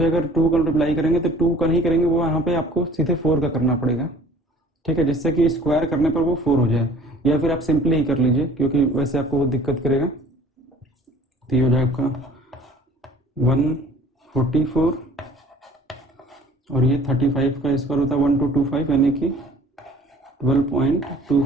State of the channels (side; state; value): both; normal; correlation 0.51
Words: अगर 2 का मल्टीप्लाई करेंगे तो 2 का नहीं करेंगे, वो यहाँ पे आपको सीधे 4 का करना पड़ेगा। ठीक है, जिससे कि स्क्वायर करने पर वो 4 हो जाए, या फिर आप सिंपली ही कर लीजिए क्योंकि वैसे आपको वो दिक्कत करेगा। तो ये हो जाएगा आपका 144 और ये 35 का स्क्वायर होता है 1225, यानी कि